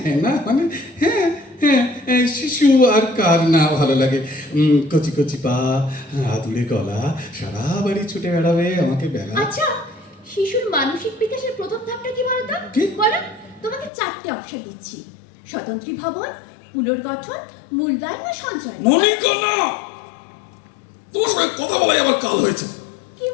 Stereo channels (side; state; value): right; drops out; at 13.9 s